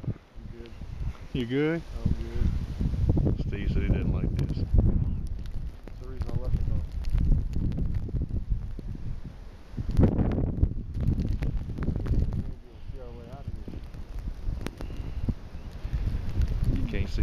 You good? I'm good. Steve said he didn't like this. That's the reason I left it though. See our way out of here. You can't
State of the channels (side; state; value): both; identical; correlation 1.00